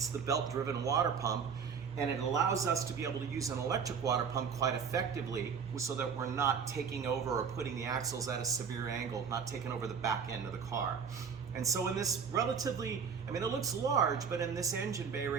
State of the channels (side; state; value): left; quieter; 6.5 dB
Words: the belt-driven water pump, and it allows us to be able to use an electric water pump quite effectively so that we're not taking over or putting the axles at a severe angle, not taking over the back end of the car. And so in this relatively, I mean, it looks large, but in this engine bay